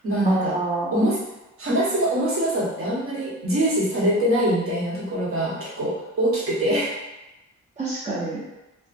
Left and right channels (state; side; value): normal; both; correlation 0.33